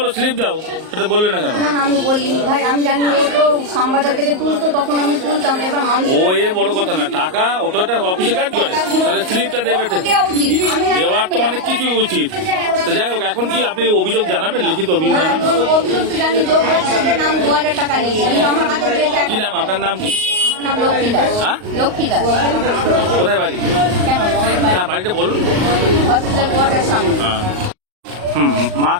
স্লিপ দাও, সেটা বললে না কেন? না না, আমি বলিনি ভাই, আমি জানি ও তো সাম্বাদার থেকে তুলতো, তখন আমি তুলতাম। এবার মানুষ ও এ বড় কথা না, টাকা ওটা একটা অফিসে কাজ করে, তাহলে স্লিপটা দেবে। দেওয়া উচিত, আমি জানি দেওয়ার তো অনেক কিছু উচিত। তো যাই হোক, এখন কি আপনি অভিযোগ জানাবেন, লিখিত অভিযোগ জানাবেন? অভিযোগ তো জানি, যোগ বলছে যে নাম 2000 টাকা নিয়েছি, কিন্তু আমার হাতে দিয়েছে কি নাম আপনার? নাম কি? আমার নাম লক্ষ্মী দাস। হ্যাঁ? লক্ষ্মী দাস। কোথায় বাড়ি? কেন? হ্যাঁ, বাড়িটা বলুন। হসপিটাল কোয়ার্টার সামনে। হ্যাঁ। মা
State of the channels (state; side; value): late; left; 38 ms